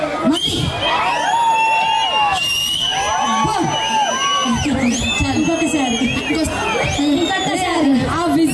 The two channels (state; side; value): identical; both; correlation 1.00